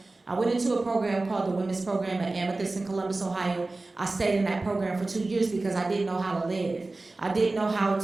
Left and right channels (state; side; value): quieter; left; 3.2 dB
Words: I went into a program called the Women's Program at Amethyst in Columbus, Ohio. I stayed in that program for 2 years because I didn't know how to live. I didn't know how